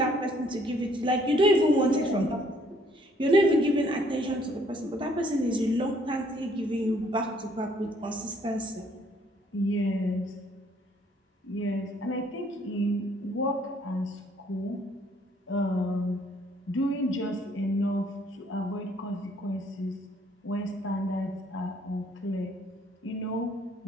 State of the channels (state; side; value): normal; both; correlation 0.63